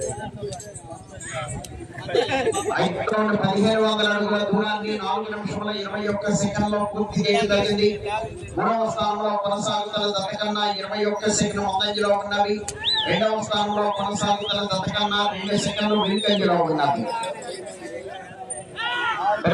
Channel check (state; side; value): identical; both; correlation 1.00